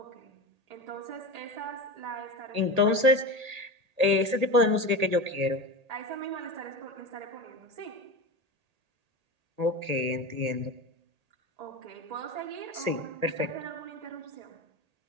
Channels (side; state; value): left; late; 1.8 ms